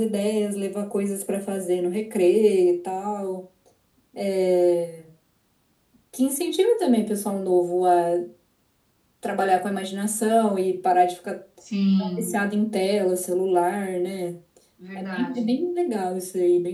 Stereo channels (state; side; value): identical; both; correlation 1.00